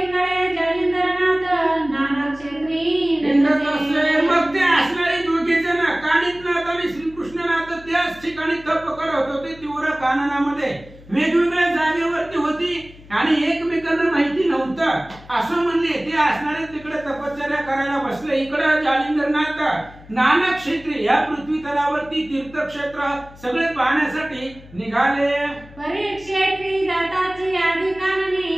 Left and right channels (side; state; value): left; noise; hum, 21 dB below the sound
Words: जालिंदरनाथ नाना क्षेत्री हिंडत असे. मग ते असणारे दोघे जण कानिपनाथ आणि श्रीकृष्णनाथ त्याच ठिकाणी तप करत होते तीव्र काननामध्ये. वेगवेगळ्या जागेवरती होती आणि एकमेकांना माहिती नव्हतं असं म्हणले. ते असणारे तिकडे तपश्चर्या करायला बसले. इकडे जालिंदरनाथ नाना क्षेत्री या पृथ्वी तलावरती तीर्थक्षेत्र सगळे पाहण्यासाठी निघाले. परीक्षेत्री जाताची आधी